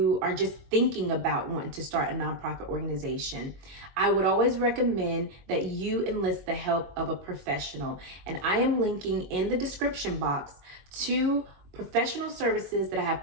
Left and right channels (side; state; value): left; late; 22 ms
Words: are just thinking about wanting to start a nonprofit organization, I would always recommend that you enlist the help of a professional. And I am linking in the description box to professional services that I